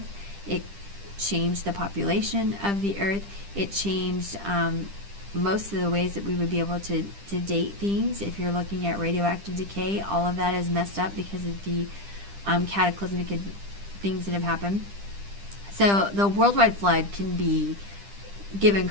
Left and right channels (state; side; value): late; left; 10 ms